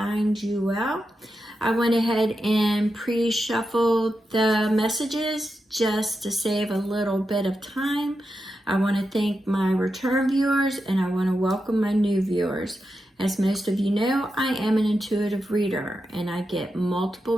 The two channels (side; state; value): both; normal; correlation 0.88